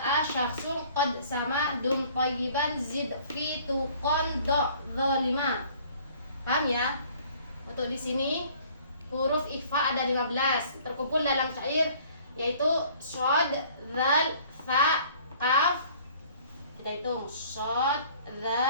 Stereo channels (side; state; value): both; inverted; correlation -0.54